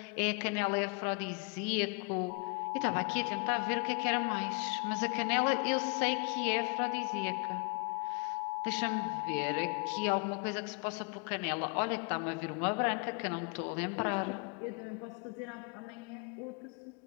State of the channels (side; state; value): right; quieter; 33.8 dB